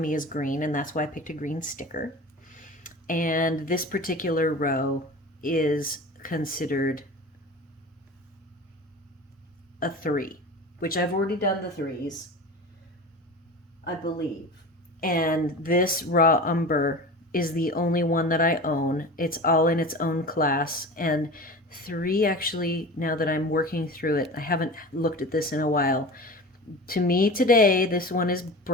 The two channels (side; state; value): both; normal; correlation 0.34